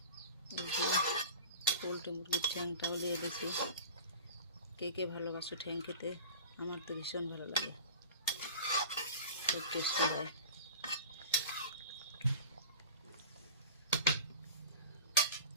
এই যে পোলট্রি মুরগির ঠ্যাংটাও দিয়ে দিয়েছি। কে কে ভালোবাসো ঠ্যাং খেতে? আমার তো ভীষণ ভালো লাগে, খুব টেস্টি হয়।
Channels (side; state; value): both; inverted; correlation -0.37